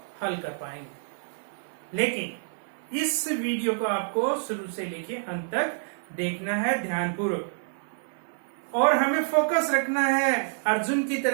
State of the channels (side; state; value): left; silent; 59 dB below the other